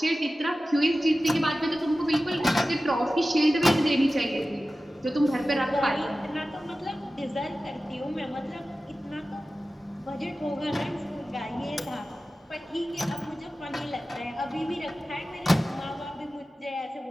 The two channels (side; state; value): both; normal; correlation 0.95